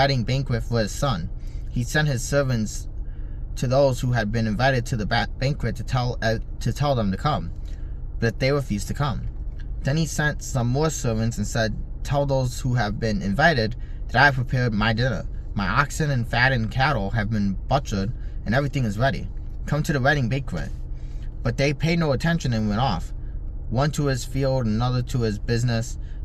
banquet for his son. He sent his servants to those who had been invited to the banquet to tell them to come, but they refused to come. Then he sent some more servants and said, 'Tell those who have been invited that I have prepared my dinner. My oxen and fattened cattle have been butchered, and everything is ready. Come to the wedding banquet.' But they paid no attention and went off, one to his field, another to his business.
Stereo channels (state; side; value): identical; both; correlation 1.00